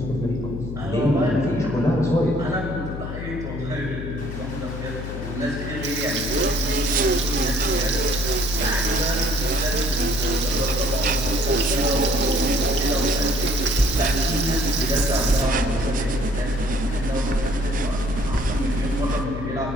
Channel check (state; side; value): noise; left; hum, 7 dB below the sound